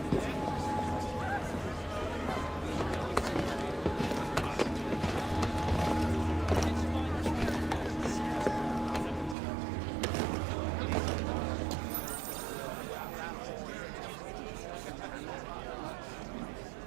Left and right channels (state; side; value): drops out; left; at 9.3 s